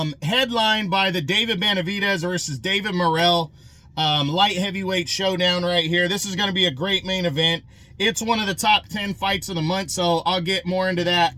by the David Benavidez versus David Morrell light heavyweight showdown right here. This is going to be a great main event. It's one of the top 10 fights of the month, so I'll get more into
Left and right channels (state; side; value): identical; both; correlation 1.00